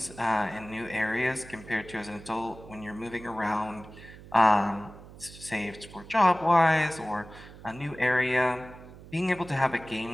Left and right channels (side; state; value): right; noise; hum, 18 dB below the sound